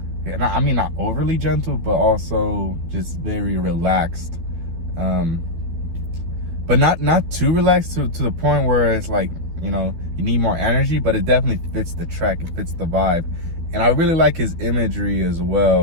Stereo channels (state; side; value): late; left; 12 ms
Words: mean not overly gentle, but also just very relaxed, but not too relaxed to the point where it's like, you know, you need more energy, but it definitely fits the track, it fits the vibe. And I really like his imagery as